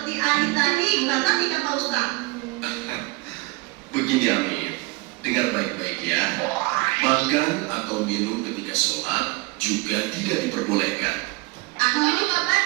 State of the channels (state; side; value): quieter; left; 24.5 dB